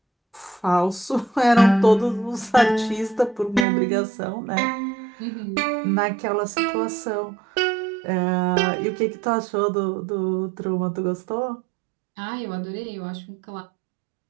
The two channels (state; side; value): drops out; left; at 3.7 s